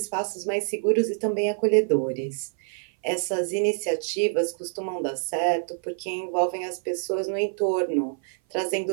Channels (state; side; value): silent; left; 57 dB below the other